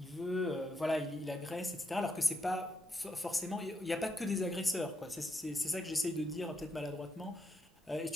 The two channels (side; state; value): both; normal; correlation 0.80